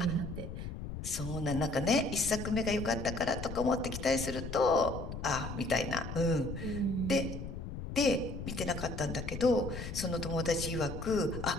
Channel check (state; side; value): noise; left; rumble, 7 dB below the sound